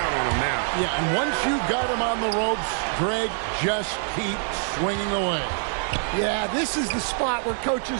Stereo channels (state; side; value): silent; left; 59 dB below the other